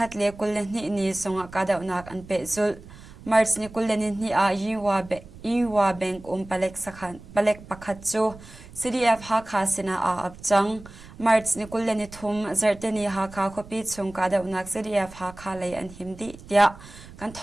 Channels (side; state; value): right; noise; rumble, 18 dB below the sound